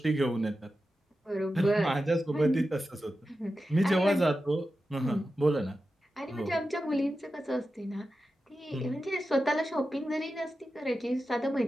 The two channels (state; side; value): normal; both; correlation 0.92